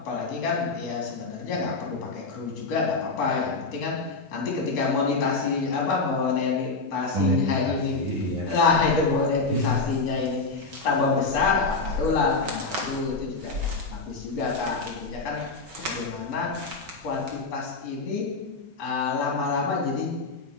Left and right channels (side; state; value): right; quieter; 3.8 dB